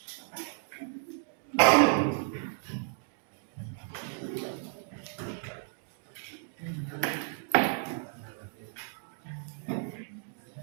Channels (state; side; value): silent; left; 56 dB below the other